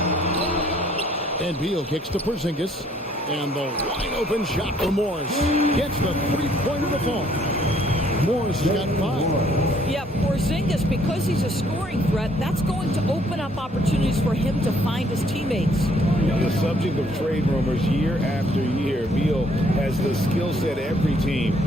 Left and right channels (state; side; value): normal; both; correlation 0.64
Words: And Beal kicks to Porzingis. And the wide open shot for Morris. Gets the three-pointer to fall. Morris has got 5. Yeah, Porzingis, because he's a scoring threat, that's going to open up opportunities for him to find his teammates. The subject of trade rumors year after year, Beal has the skill set every team